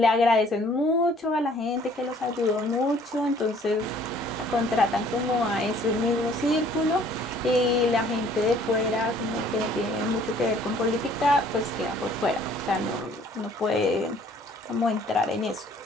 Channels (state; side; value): normal; both; correlation 0.57